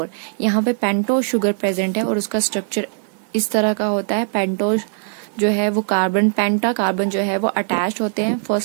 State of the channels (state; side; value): silent; left; digital silence